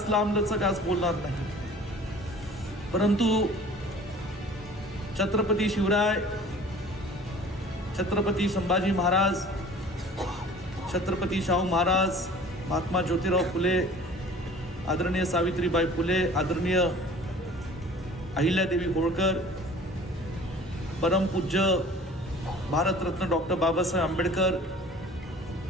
लांबलचक आज बोलणार नाही, परंतु छत्रपती शिवराय, छत्रपती संभाजी महाराज, छत्रपती शाहू महाराज, महात्मा ज्योतिराव फुले, आदरणीय सावित्रीबाई फुले, आदरणीय अहिल्यादेवी होळकर, परमपूज्य भारतरत्न डॉक्टर बाबासाहेब आंबेडकर,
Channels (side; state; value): both; normal; correlation 0.47